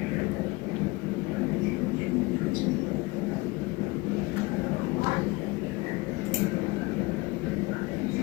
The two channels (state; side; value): quieter; right; 22.6 dB